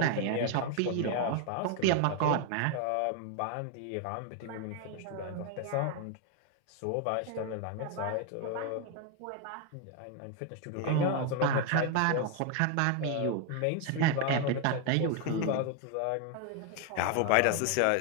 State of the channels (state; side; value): different; both; correlation 0.01